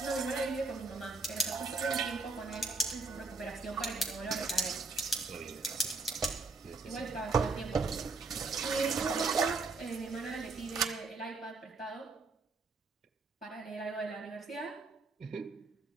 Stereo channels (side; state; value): left; quieter; 3.7 dB